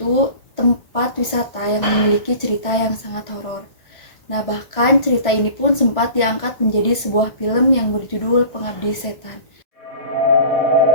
tempat wisata yang memiliki cerita yang sangat horor. Nah, bahkan cerita ini pun sempat diangkat menjadi sebuah film yang berjudul Pengabdi Setan.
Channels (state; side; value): late; right; 1.5 ms